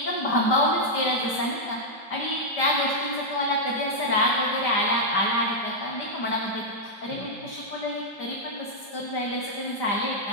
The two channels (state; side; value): late; right; 4.9 ms